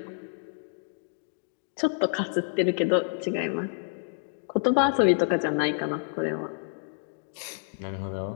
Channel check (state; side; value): silent; right; digital silence